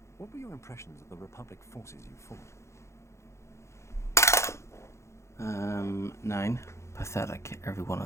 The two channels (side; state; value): right; late; 0.14 ms